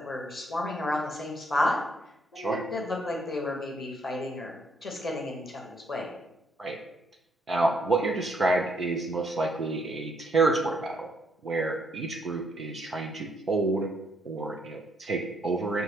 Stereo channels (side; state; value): both; normal; correlation 0.71